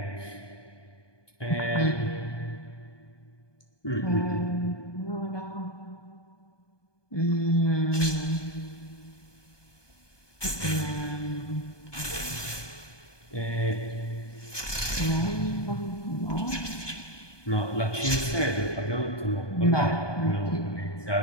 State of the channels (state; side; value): late; right; 1.2 ms